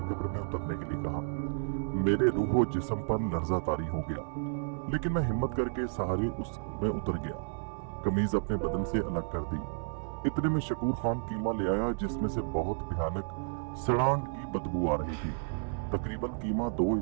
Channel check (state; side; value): silent; left; 57 dB below the other